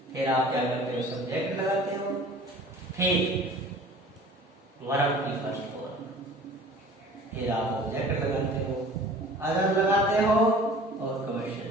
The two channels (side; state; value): both; normal; correlation 0.45